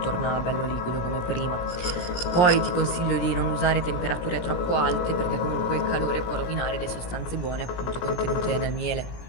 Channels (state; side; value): late; right; 17 ms